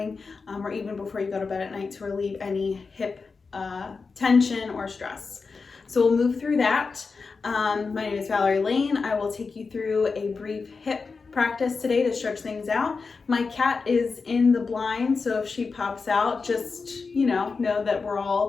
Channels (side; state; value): right; quieter; 4.6 dB